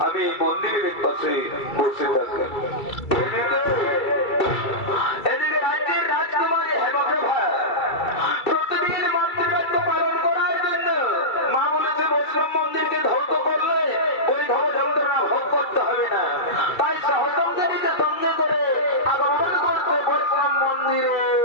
আমি মন্দিরের পাশে বসে থাকি। এদিকে রাজ্যের রাজকুমারী হেমপ্রভা প্রতিদিন মাতৃকার্য পালন করার জন্য মা বলেছে বৈষ্ণব মন্দিরকে ধ্বংস করলে ওই ভব যন্ত্রণা ভোগ করতে হবে না, তাই সহসঙ্গীকে সঙ্গে করে আগমন করছে বৈষ্ণব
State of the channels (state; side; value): late; right; 2.3 ms